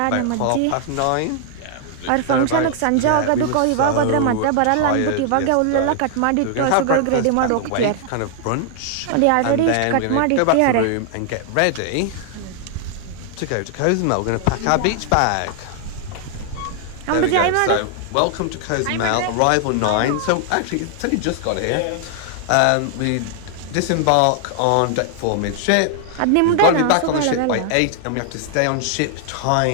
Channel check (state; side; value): different; both; correlation 0.00